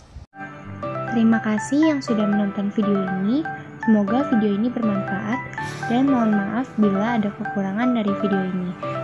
Terima kasih yang sudah menonton video ini. Semoga video ini bermanfaat dan mohon maaf bila ada kekurangan dari video ini.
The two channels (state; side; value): identical; both; correlation 1.00